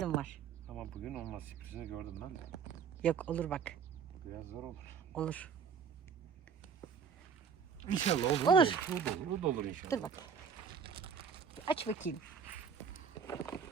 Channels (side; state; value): left; quieter; 6.6 dB